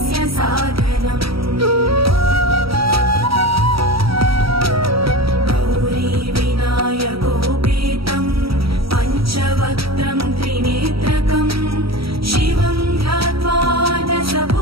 साधनम् गौरी विनायकोपेतं पञ्चवक्त्रं त्रिनेत्रकं शिवं ध्यात्वा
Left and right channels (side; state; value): left; late; 0.75 ms